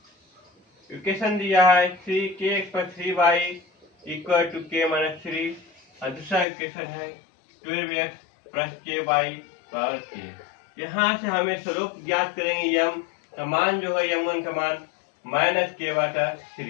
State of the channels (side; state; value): right; drops out; at 6.5 s